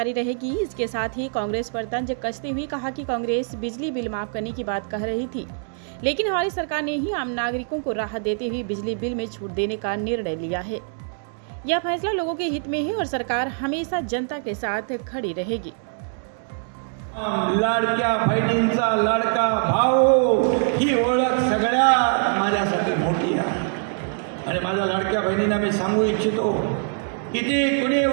रहेगी। इसके साथ ही कांग्रेस पर तंज कसते हुए कहा कि कांग्रेस बिजली बिल माफ करने की बात कह रही थी, लेकिन हमारी सरकार ने ही आम नागरिकों को राहत देते हुए बिजली बिल में छूट देने का निर्णय लिया है। यह फैसला लोगों के हित में है और सरकार हमेशा जनता के साथ खड़ी रहेगी। लाडक्या बहिणींचा लाडका भाऊ ही ओळख सगळ्या माझ्यासाठी मोठी आहे आणि माझ्या लाडक्या बहिणींना मी सांगू इच्छितो, किती कुणी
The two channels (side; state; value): left; silent; 63 dB below the other